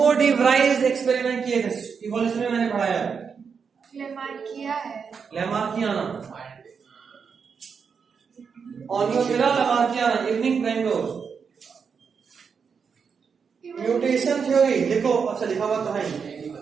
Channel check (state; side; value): quieter; left; 6.1 dB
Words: डी व्राइज एक्सपेरिमेंट किए थे, इवोल्यूशन में मैंने पढ़ाया है। Lamarckiana, Oenothera lamarckiana, evening primrose. Mutation theory देखो, अच्छा लिखा हुआ तो है।